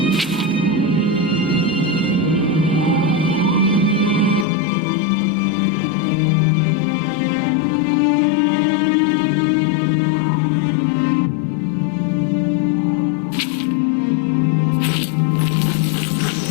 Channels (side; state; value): right; drops out; at 4.5 s